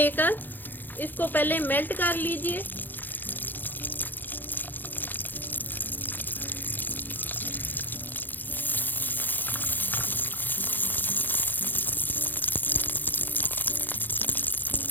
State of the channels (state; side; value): late; right; 0.089 ms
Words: इसको पहले मेल्ट कर लीजिए।